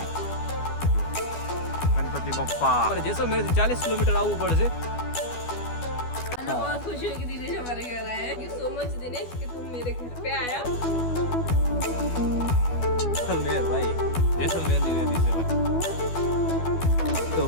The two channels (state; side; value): late; right; 12 ms